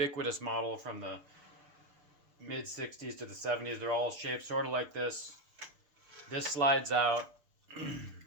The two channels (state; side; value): late; left; 6.7 ms